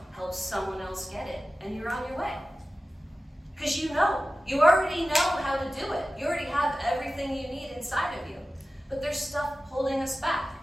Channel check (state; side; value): normal; both; correlation 0.95